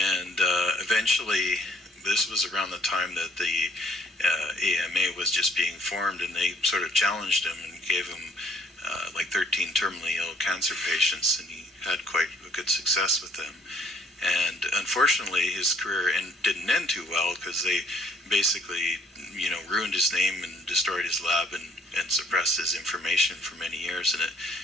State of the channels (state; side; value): normal; both; correlation 0.63